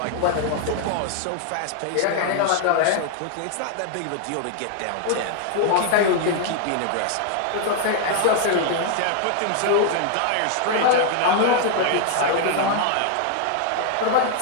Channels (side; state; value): both; different; correlation 0.00